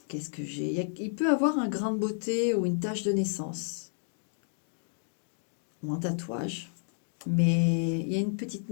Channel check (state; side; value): silent; right; digital silence